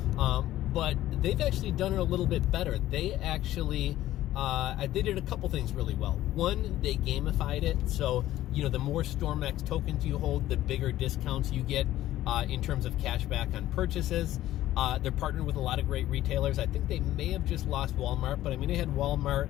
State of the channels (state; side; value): quieter; right; 14.2 dB